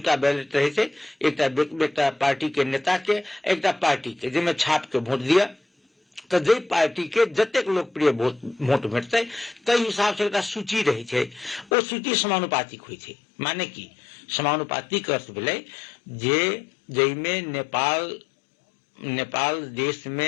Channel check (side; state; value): right; drops out; at 11.7 s